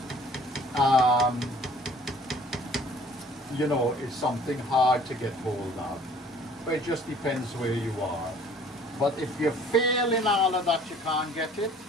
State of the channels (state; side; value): normal; both; correlation 0.53